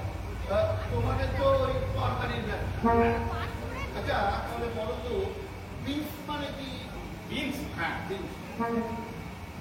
তোমাদের তো ওই তরকারির ব্যবসা। আচ্ছা তাহলে বলো তো বিনস মানে কি? বিনস? হ্যাঁ বিনস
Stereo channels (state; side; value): identical; both; correlation 1.00